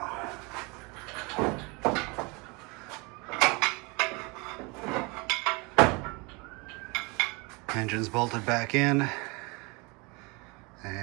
Engine's bolted back in,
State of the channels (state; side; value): quieter; left; 28.2 dB